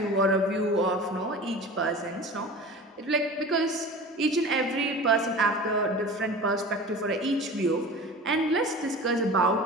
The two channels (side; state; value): both; normal; correlation 0.37